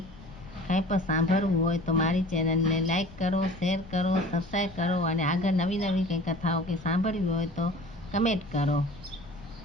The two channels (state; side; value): noise; left; rumble, 19 dB below the sound